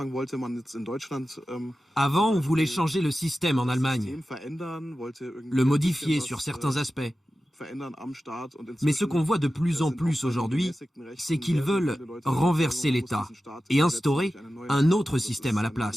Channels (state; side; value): normal; both; correlation 0.94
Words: Avant, on voulait changer le système en Allemagne, le modifier sur certains aspects. Mais ce qu'on voit de plus en plus aujourd'hui, c'est qu'ils veulent renverser l'État et instaurer un autre système à la